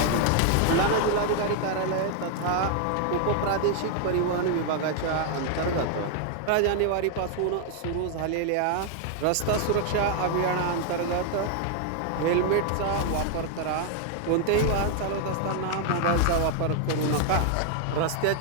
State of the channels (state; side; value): different; both; correlation 0.00